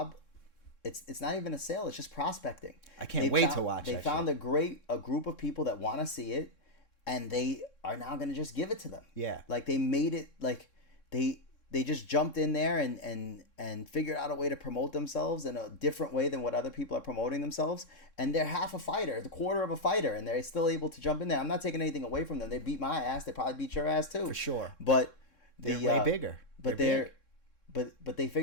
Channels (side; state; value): right; late; 3.6 ms